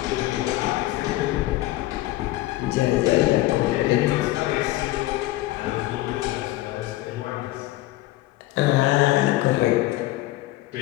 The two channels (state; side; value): quieter; right; 17.1 dB